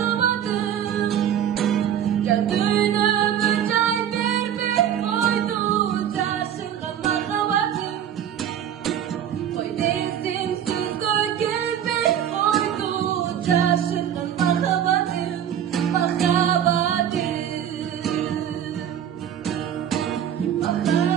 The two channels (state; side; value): quieter; left; 9.8 dB